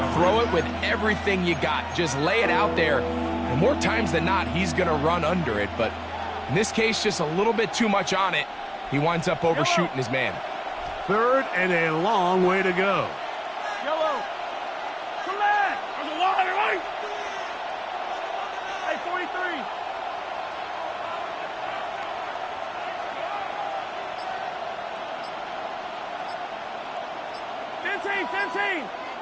throw it with everything you got. Just lay it out there. And more times than not, he's going to run under it. But in this case, just a little bit too much on it. He winds up overshooting his man. 3rd and a long way to go. Yellow. Come back. There's a line, right? Hey, 43.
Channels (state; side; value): identical; both; correlation 1.00